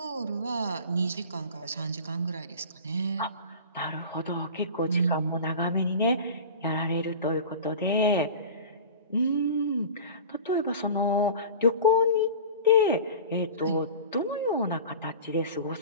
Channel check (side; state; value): both; inverted; correlation -0.36